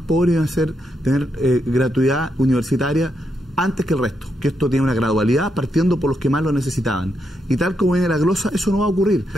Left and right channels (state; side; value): normal; both; correlation 0.81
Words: pobres iban a tener gratuidad universitaria antes que el resto, que esto tiene una gradualidad partiendo por los que más lo necesitaban. Y tal como viene la glosa, eso no va a ocurrir.